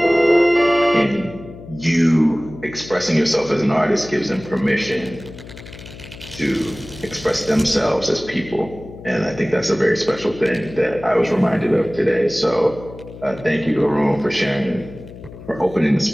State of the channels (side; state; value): left; noise; hum, 16 dB below the sound